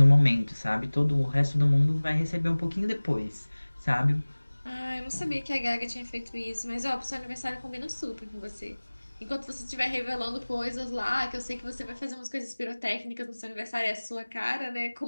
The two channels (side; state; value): both; inverted; correlation -1.00